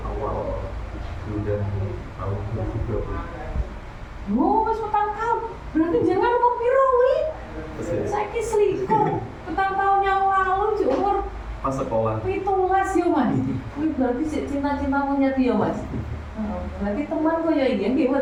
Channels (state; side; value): identical; both; correlation 1.00